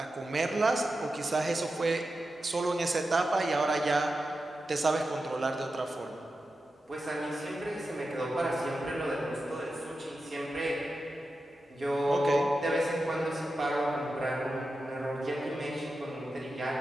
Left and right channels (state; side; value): normal; both; correlation 0.91